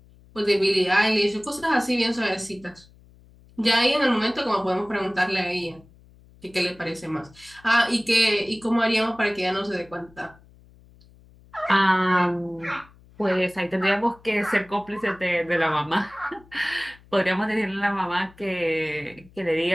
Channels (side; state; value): left; noise; hum, 26 dB below the sound